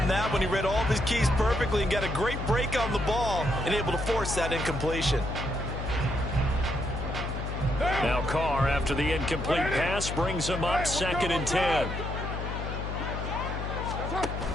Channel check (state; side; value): noise; left; hum, 4 dB below the sound